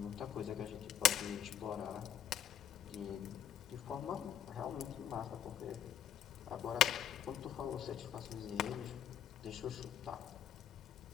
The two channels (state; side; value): quieter; right; 10.1 dB